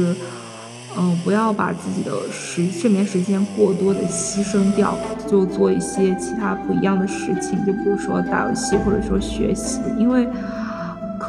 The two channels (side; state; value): both; identical; correlation 1.00